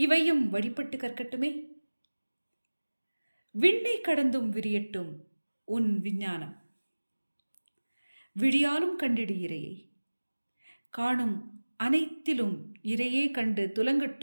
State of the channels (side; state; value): both; inverted; correlation -1.00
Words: வழிபட்டு கற்கட்டுமே. விண்ணை கடந்தும் விரியட்டும் உன் விஞ்ஞானம். விடியாலும் கண்டிடு இறையை, காணும் அனைத்திலும் இறையே கண்டு